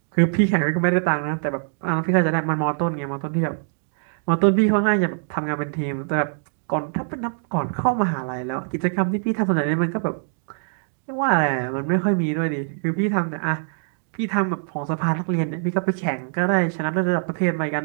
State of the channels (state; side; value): silent; left; 63 dB below the other